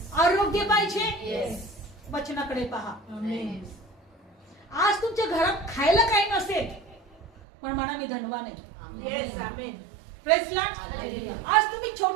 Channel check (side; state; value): left; drops out; at 7.2 s